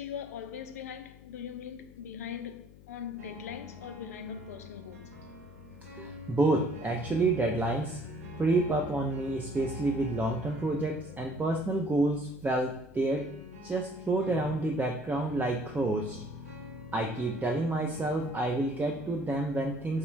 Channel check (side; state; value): left; noise; hum, 21 dB below the sound